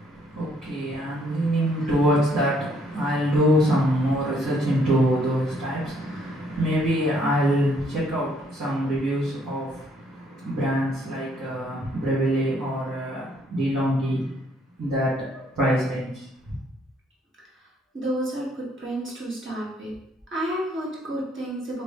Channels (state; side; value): normal; both; correlation 0.67